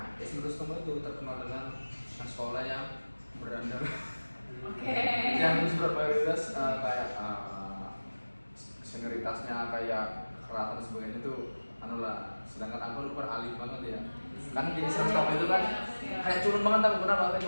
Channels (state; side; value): inverted; both; correlation -1.00